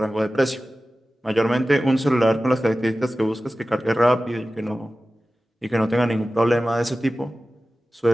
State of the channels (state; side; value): normal; both; correlation 0.95